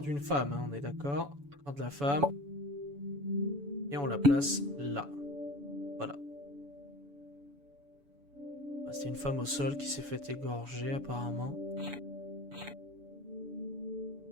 d'une femme, hein, on est d'accord. Corps de la femme. Et on la place là. Voilà. C'est une femme au sol qui s'est fait égorger apparemment.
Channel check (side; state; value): left; late; 7.0 ms